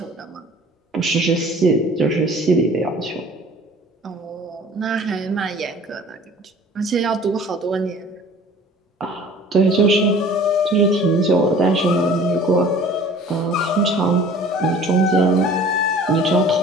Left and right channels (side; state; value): both; normal; correlation 0.48